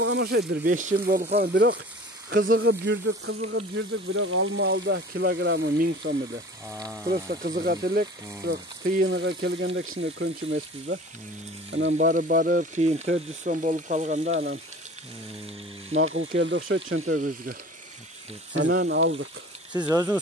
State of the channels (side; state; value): both; normal; correlation 0.43